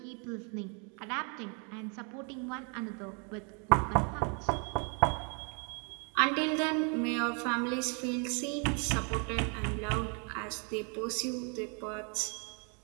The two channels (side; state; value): left; quieter; 37.2 dB